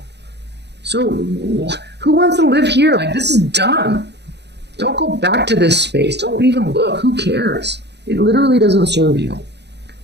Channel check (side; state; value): left; late; 0.50 ms